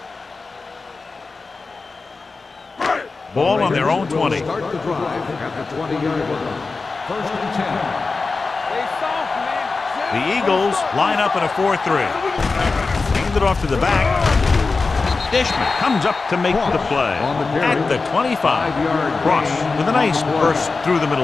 Ball on their own 20. Start the drive at the 20-yard line. First and 10. Stay soft, man. The Eagles line up in a 4-3. Hand it off to the back. Dishman comes up to make the play at the 25. Ross with a nice burst through the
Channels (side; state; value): right; quieter; 4.1 dB